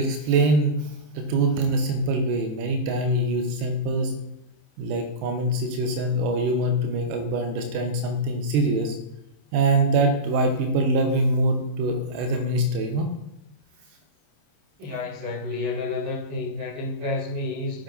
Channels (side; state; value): left; late; 27 ms